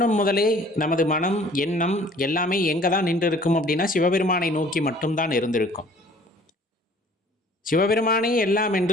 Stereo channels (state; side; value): normal; both; correlation 0.52